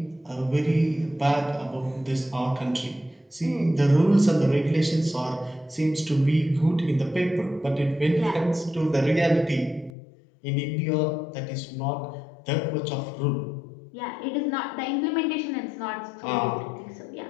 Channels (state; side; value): drops out; right; at 9.9 s